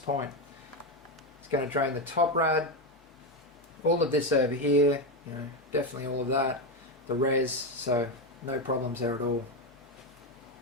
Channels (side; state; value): both; normal; correlation 0.10